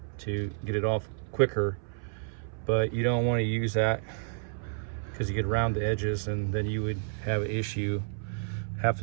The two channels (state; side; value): silent; left; 58 dB below the other